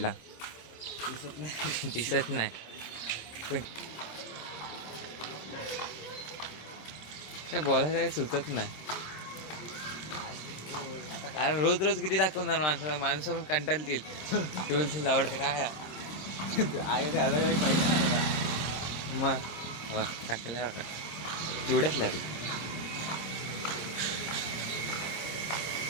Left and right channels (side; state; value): right; late; 26 ms